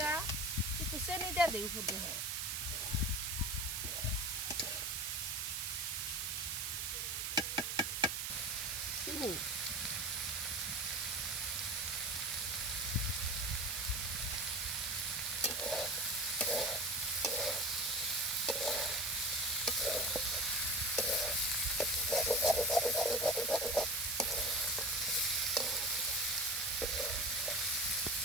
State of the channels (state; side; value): noise; right; hiss, 1 dB below the sound